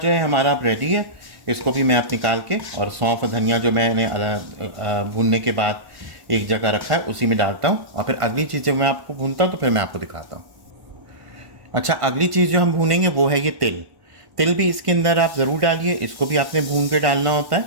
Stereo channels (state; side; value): late; left; 1.5 ms